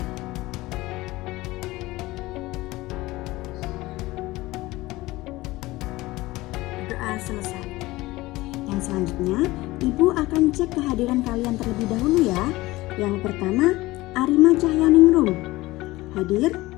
Berdoa selesai. Yang selanjutnya, Ibu akan cek kehadiran kalian terlebih dahulu ya. Yang pertama, Arima Cahyaningrum. Hadir.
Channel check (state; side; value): quieter; right; 19.3 dB